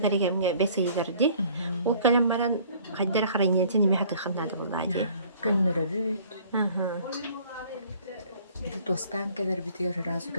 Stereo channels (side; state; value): both; inverted; correlation -0.54